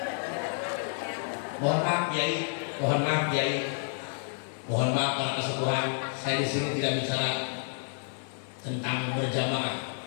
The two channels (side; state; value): right; silent; 58 dB below the other